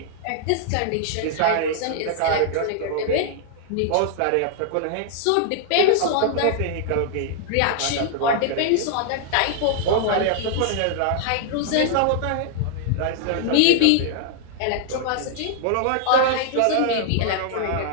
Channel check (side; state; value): both; different; correlation -0.01